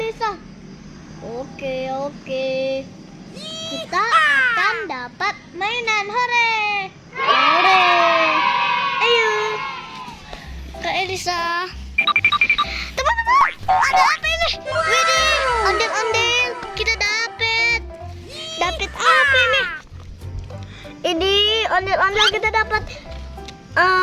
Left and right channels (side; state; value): both; identical; correlation 1.00